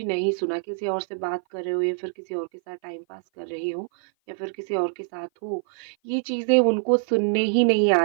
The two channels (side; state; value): left; silent; 56 dB below the other